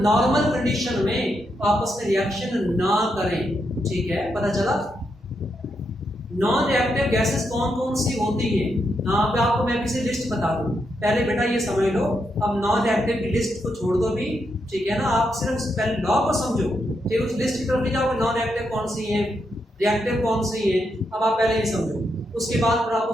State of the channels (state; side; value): normal; both; correlation 0.82